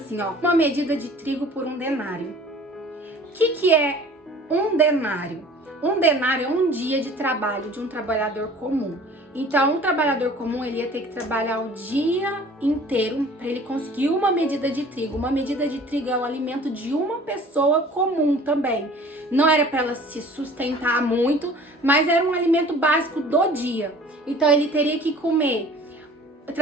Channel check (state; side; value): normal; both; correlation 0.47